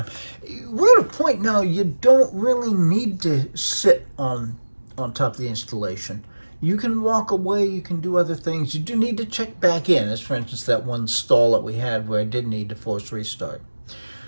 We're at a point now you don't really need to sit on top of the installation. You can walk away, you can do other things. You do need to check back in, as for instance that one stall that we had where I did need to force restart.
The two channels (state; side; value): inverted; both; correlation -1.00